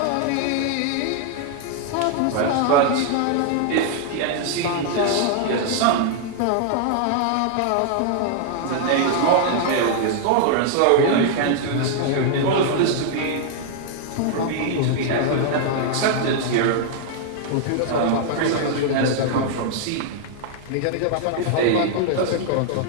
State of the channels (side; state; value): both; different; correlation 0.00